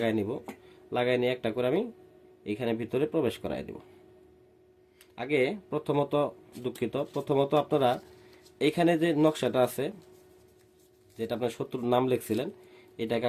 নিব। লাগাই নিয়ে একটা করে আমি এখানে ভিতরে প্রবেশ করাই দেব। আগে প্রথমত আপনারা এইখানে যে নকশাটা আছে, যেটা আপনার শত্রুর নাম লিখছিলেন, এটাকে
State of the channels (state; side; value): identical; both; correlation 1.00